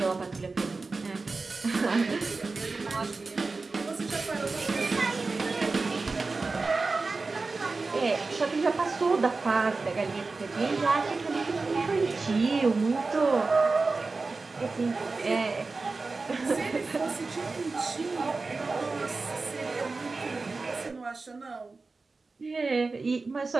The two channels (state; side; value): quieter; left; 3.9 dB